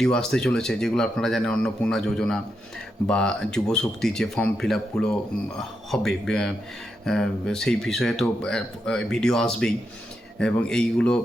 আসতে চলেছে, যেগুলো আপনারা জানেন অন্নপূর্ণা যোজনা বা যুবশক্তি যে ফর্ম ফিল আপগুলো হবে সেই বিষয়ে তো ভিডিও আসবেই, এবং এই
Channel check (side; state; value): both; normal; correlation 0.84